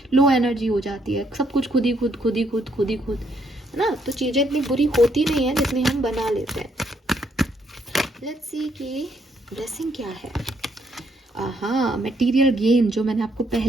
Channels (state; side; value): normal; both; correlation 0.72